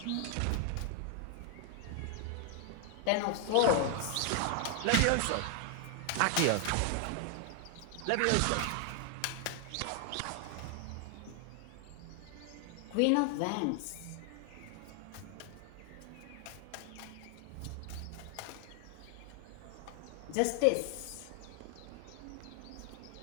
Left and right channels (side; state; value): both; different; correlation 0.00